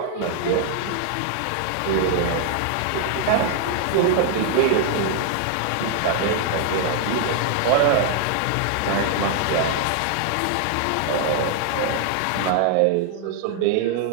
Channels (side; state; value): both; different; correlation 0.00